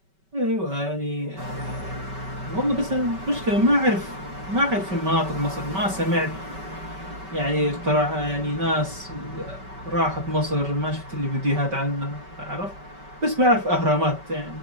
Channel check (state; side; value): late; left; 5.2 ms